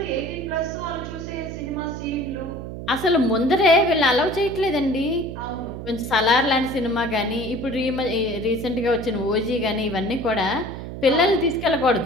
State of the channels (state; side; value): noise; right; hum, 9 dB below the sound